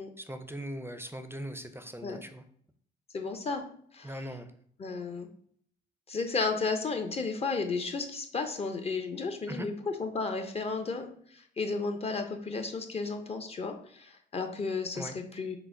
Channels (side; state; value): right; quieter; 3.4 dB